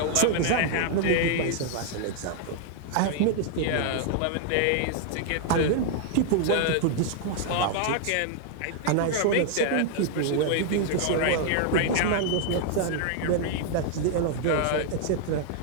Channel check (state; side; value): different; both; correlation 0.00